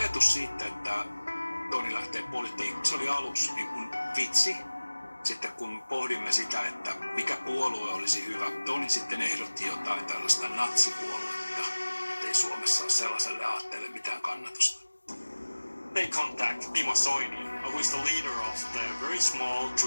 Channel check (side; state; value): both; inverted; correlation -1.00